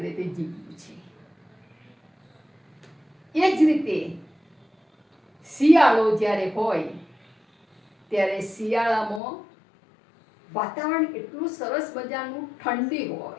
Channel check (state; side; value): drops out; right; at 9.2 s